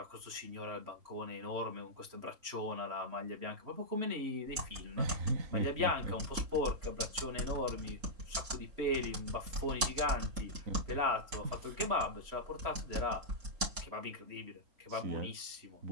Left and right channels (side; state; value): left; late; 3.7 ms